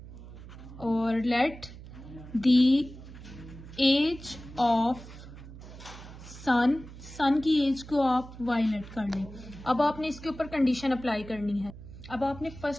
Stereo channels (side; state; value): right; noise; hum, 15 dB below the sound